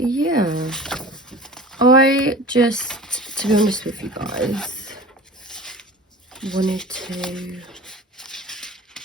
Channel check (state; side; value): normal; both; correlation 0.39